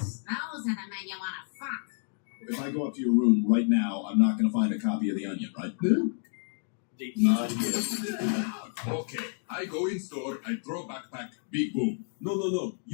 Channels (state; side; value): silent; right; 58 dB below the other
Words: those are the men you want to fuck. If I go up to your room right now, I'm not going to find a copy of The Onion, right? Okay, I go in store, I throw backpack, big boom. No,